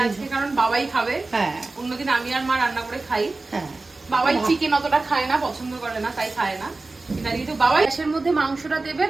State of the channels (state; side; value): quieter; left; 3.4 dB